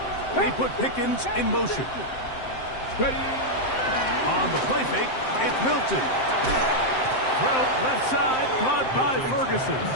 They put Pickens in motion. Ready. On the play fake, it's Milton. Throw left side, caught by Ferguson.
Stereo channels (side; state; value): right; late; 7.7 ms